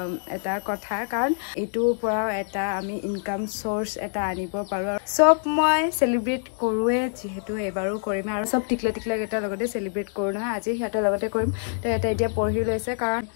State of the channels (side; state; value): right; silent; digital silence